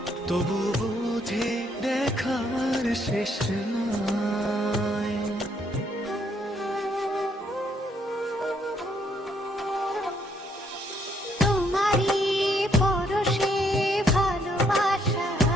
তবু বুঝে দেখার শেষ নাই। তোমারই পরশে ভালোবাসা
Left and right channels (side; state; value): both; normal; correlation 0.71